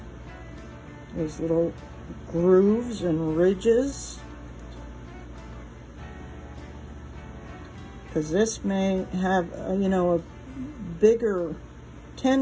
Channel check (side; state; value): both; identical; correlation 1.00